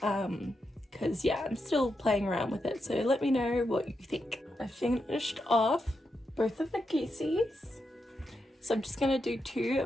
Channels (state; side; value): normal; both; correlation 0.85